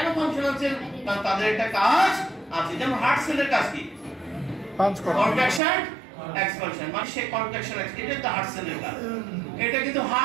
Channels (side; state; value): left; drops out; at 5.6 s